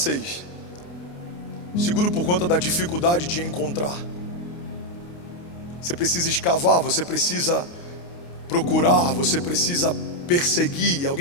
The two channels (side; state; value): right; late; 29 ms